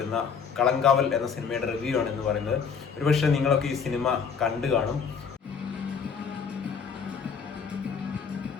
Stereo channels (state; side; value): quieter; right; 6.3 dB